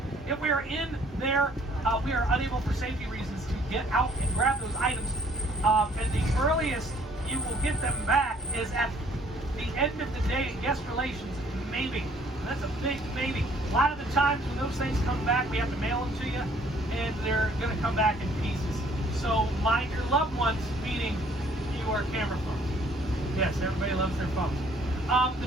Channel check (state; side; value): normal; both; correlation 0.60